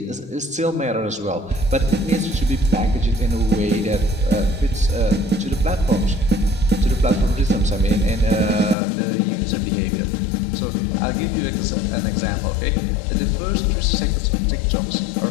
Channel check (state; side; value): drops out; right; at 8.8 s